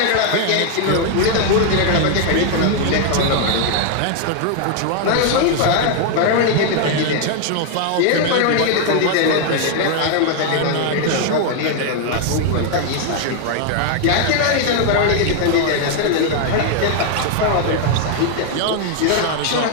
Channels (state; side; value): different; both; correlation 0.00